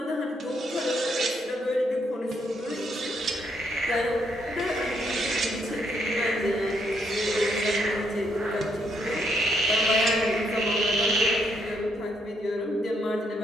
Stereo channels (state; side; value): normal; both; correlation 0.74